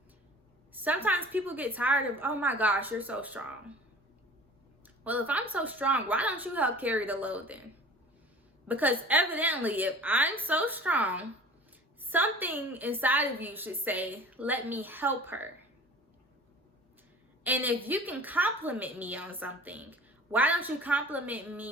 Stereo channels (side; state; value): both; normal; correlation 0.44